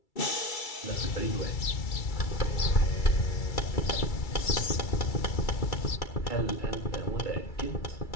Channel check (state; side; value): late; right; 2.3 ms